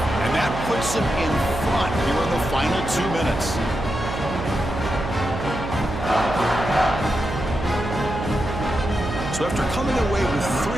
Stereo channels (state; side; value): noise; right; hum, 7 dB below the sound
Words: And that puts him in front here in the final 2 minutes. So after coming away with 3